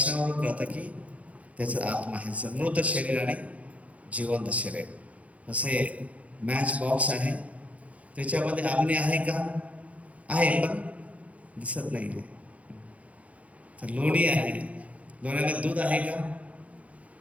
कळतं की त्याचा आत्मा आहे. मृत शरीर आणि जिवंत शरीर. असे मॅच बॉक्स आहे, त्याच्यामध्ये अग्नी आहे का? आहे, पण दिसत नाही आहे. तर लोणी आहे, लोण्यामध्ये दूध आहे का?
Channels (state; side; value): late; left; 0.067 ms